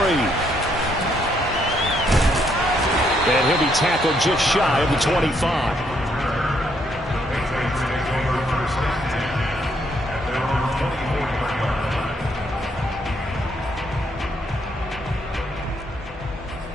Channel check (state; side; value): normal; both; correlation 0.72